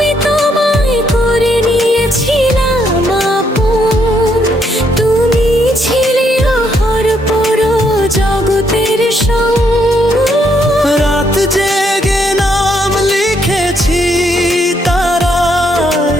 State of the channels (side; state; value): both; normal; correlation 0.73